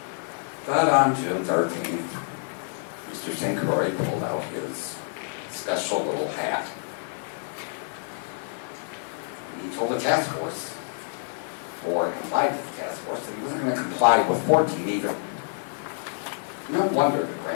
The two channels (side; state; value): right; silent; 60 dB below the other